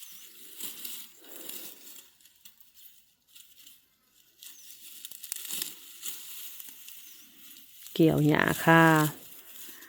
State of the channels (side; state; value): both; identical; correlation 1.00